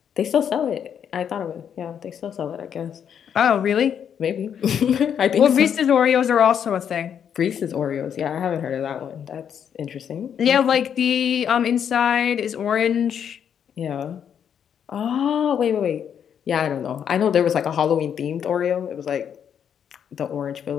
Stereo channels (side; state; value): right; quieter; 8.3 dB